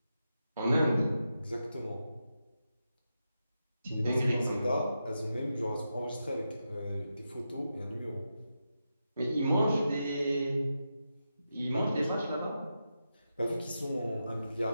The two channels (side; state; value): both; inverted; correlation -0.88